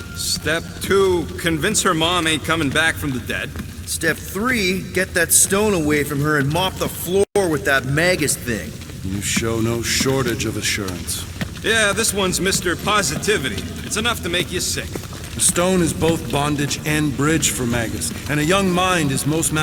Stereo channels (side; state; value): both; identical; correlation 1.00